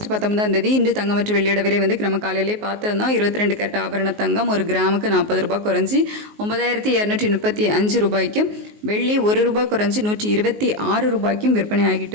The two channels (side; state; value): left; late; 19 ms